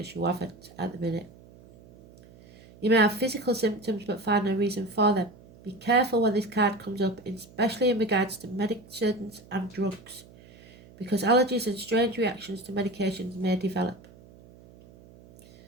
you haven't at the minute. You may have physical symptoms but find no reason for them. Be careful when this card comes up, especially in regards to medicines and drugs, because allergies and strange reactions to medications may develop.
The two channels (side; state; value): right; noise; hum, 23 dB below the sound